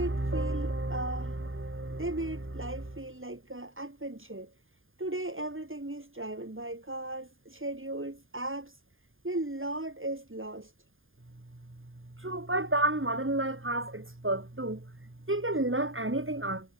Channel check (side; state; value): left; late; 0.59 ms